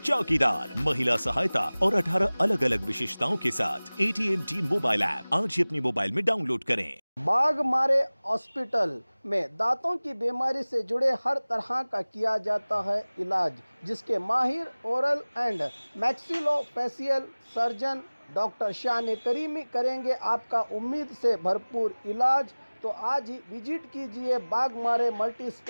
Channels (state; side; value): inverted; both; correlation -1.00